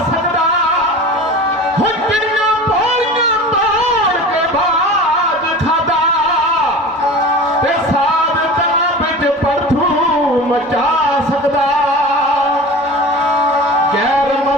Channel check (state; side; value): normal; both; correlation 0.35